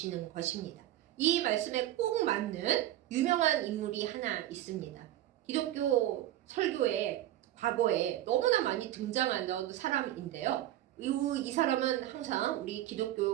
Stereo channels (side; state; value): left; quieter; 13.7 dB